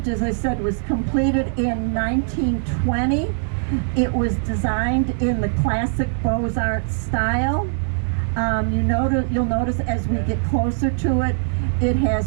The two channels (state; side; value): silent; left; digital silence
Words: as I said, was completed in 1920. It was designed in the classic Beaux-Arts style. You'll notice as we get closer to it, it